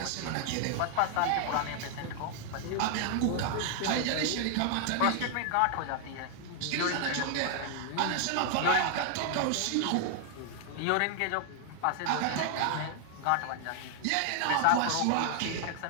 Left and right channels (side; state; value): both; different; correlation 0.00